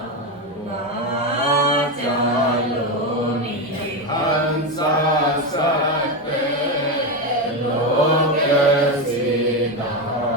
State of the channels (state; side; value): normal; both; correlation 0.12